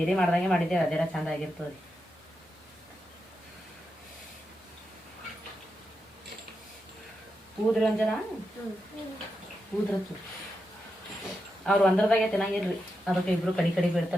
ಮಾಡ್ದಂಗೆ ಮಾಡಿದ್ದೇವೆ. ಅದೆಲ್ಲ ಚಂದ ಆಗಿರ್ತದೆ. ಊದ್ರಿ ಒಂದ್ ಜನ ಊದ್ರತ್ತು. ಅವ್ರು ಒಂದ್ರದಾಗೆ ತಿನ್ನಂಗಿಲ್ರಿ. ಅದಕ್ಕೆ ಇಬ್ರು ಕಡಿ ಕಡಿ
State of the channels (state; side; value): normal; both; correlation 0.87